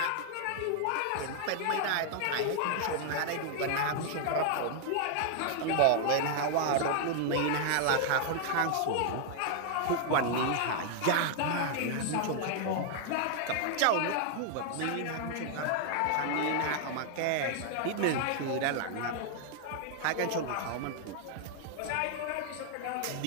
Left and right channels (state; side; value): different; both; correlation 0.00